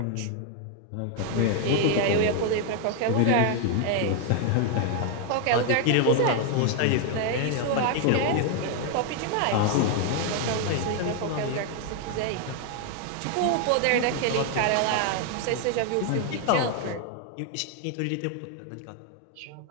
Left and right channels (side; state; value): both; different; correlation 0.01